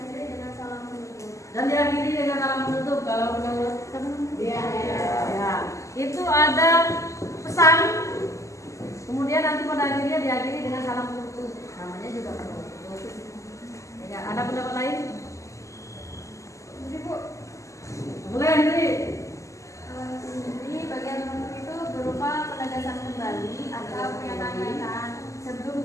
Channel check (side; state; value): right; late; 0.15 ms